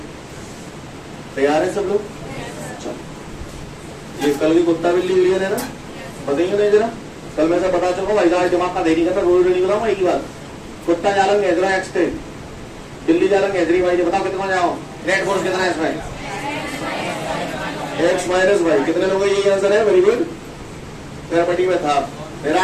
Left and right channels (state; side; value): identical; both; correlation 1.00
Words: तैयार है सब लोग? चलो, ये कल की कुत्ता बिल्ली क्लियर है ना, बताइए ना जरा, कल मैं से बता चुका भाई साहब दिमाग का देरी करना, रोज नहीं बताऊंगा एक ही बात। कुत्ता जालंग हेजरा एक्स थे, बिल्ली जालंग हेजरी वाई, बताओ कितना जाओ, नेट फोर्स कितना है इसमें? X minus Y. कितने लोगों का यही आंसर है? Very good. मेरा पट्टी में था,